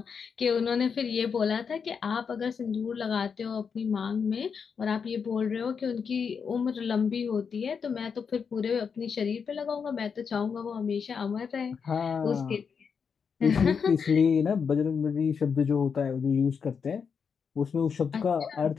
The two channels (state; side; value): quieter; right; 6.2 dB